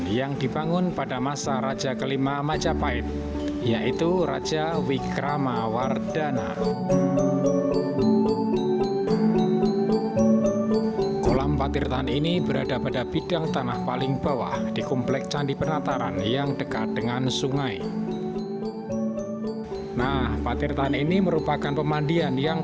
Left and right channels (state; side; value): identical; both; correlation 1.00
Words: yang dibangun pada masa Raja kelima Majapahit, yaitu Raja Wikramawardhana. Kolam patirtaan ini berada pada bidang tanah paling bawah di komplek Candi Penataran yang dekat dengan sungai. Nah, patirtaan ini merupakan pemandian